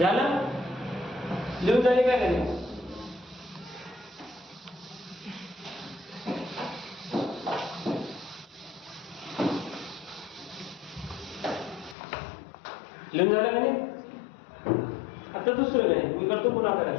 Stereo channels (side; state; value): right; drops out; at 12.0 s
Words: लिहून झाले काय नाही लिहून झालं का नाही. आता दुसरं नाही मी करतो पुन्हा